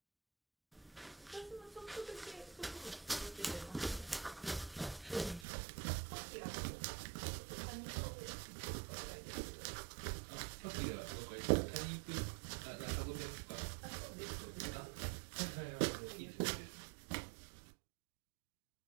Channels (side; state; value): left; drops out; at 5.5 s